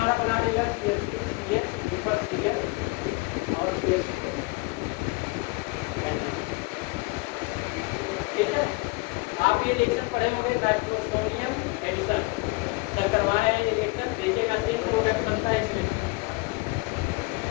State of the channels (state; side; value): quieter; right; 27.0 dB